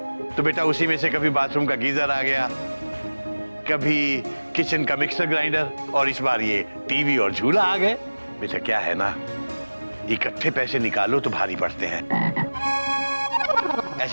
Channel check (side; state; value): both; inverted; correlation -1.00